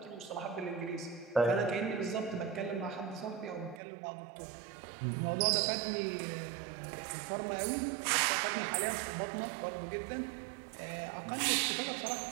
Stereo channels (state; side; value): drops out; left; at 3.8 s